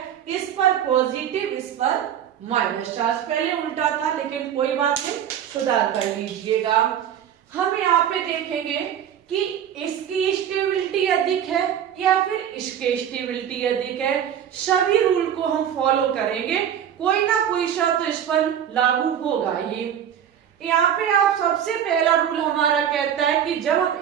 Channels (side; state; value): left; quieter; 9.5 dB